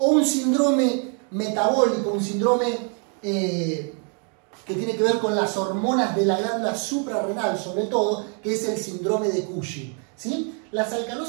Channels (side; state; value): left; quieter; 40.0 dB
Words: un síndrome metabólico, un síndrome que tiene que ver con las hormonas de la glándula suprarrenal, sobre todo, que es el síndrome de Cushing. ¿Sí? Las